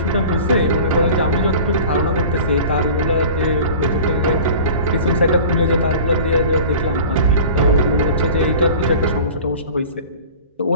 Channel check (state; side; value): inverted; both; correlation -0.40